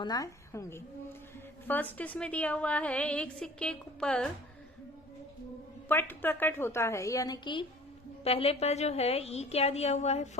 होंगी। फर्स्ट इसमें दिया हुआ है, एक सिक्के पर पट प्रकट होता है, यानी कि पहले पर जो है ई क्या दिया हुआ है?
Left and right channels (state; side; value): normal; both; correlation 0.46